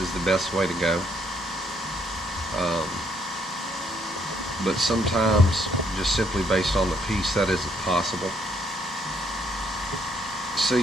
the best way to go. But sometimes, just simply based on the piece, that isn't possible. So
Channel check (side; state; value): both; normal; correlation 0.70